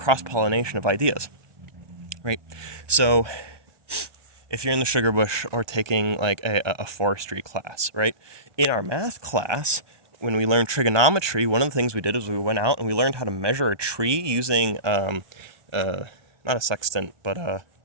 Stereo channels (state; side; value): late; left; 1.2 ms